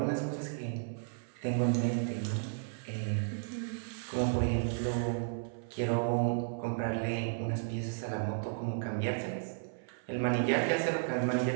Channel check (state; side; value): silent; left; 55 dB below the other